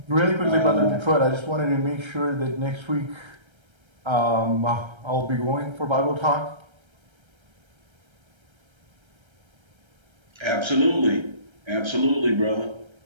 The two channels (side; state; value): left; late; 1.3 ms